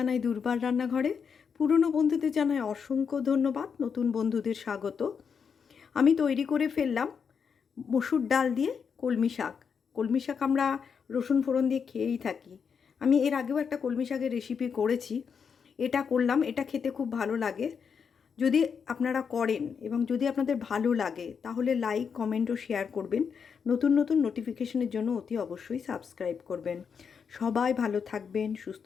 দুর্বার রান্নাঘরে। পুরনো বন্ধুদের জানাই অসংখ্য ধন্যবাদ, নতুন বন্ধুদের স্বাগত। আমি তৈরি করে ফেললাম মসুর ডাল দিয়ে কলমি শাক। কলমি শাক আমরা রসুন ফোড়ন দিয়ে খেয়েই থাকি। আমি এর আগেও একটা কলমি শাকের রেসিপি করেছি, এটা করলাম। এটা খেতে খুব ভালো লাগে। যদি আপনারা করেন এবং যদি আপনাদের ভালো লাগে তাহলে লাইক, কমেন্ট ও শেয়ার করবেন। নতুন নতুন নোটিফিকেশনের জন্য অতি অবশ্যই সাবস্ক্রাইব করবেন। সবাই ভালো থাকবেন,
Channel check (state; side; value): quieter; right; 6.4 dB